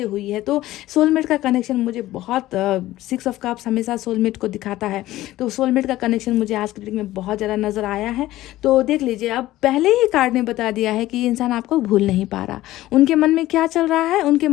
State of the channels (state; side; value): quieter; right; 15.8 dB